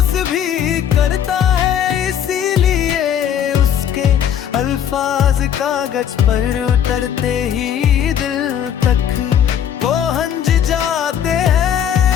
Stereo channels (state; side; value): quieter; right; 9.2 dB